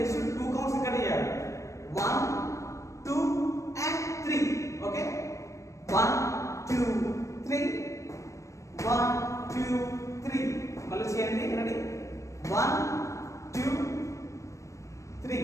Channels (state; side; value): late; right; 0.15 ms